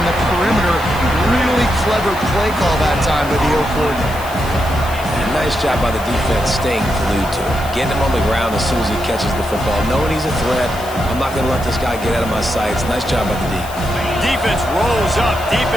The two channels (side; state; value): left; noise; hiss, 16 dB below the sound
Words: the perimeter. Really clever play call that time by the O coordinator. Nice job by the defense staying glued to him. Getting him on the ground as soon as he catches the football. Knowing he's a threat, I'm not going to let this guy get out of my sights. Nice job by the D. Defense rolls up deep